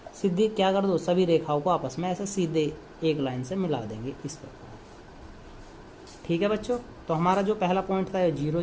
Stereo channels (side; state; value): both; identical; correlation 1.00